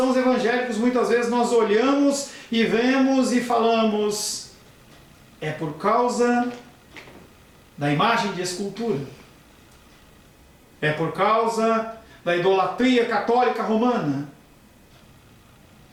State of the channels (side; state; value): both; identical; correlation 1.00